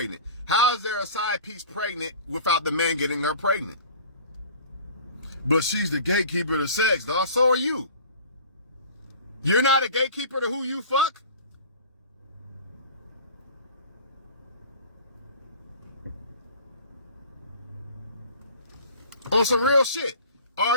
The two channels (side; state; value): both; inverted; correlation -0.43